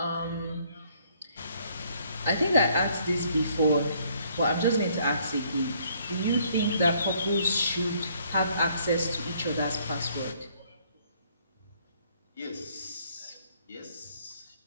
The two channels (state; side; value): inverted; both; correlation -0.65